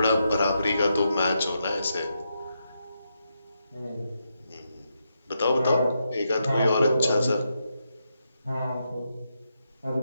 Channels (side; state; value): both; inverted; correlation -0.83